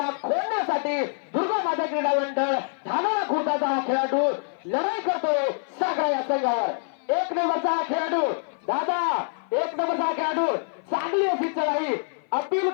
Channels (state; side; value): silent; right; 56 dB below the other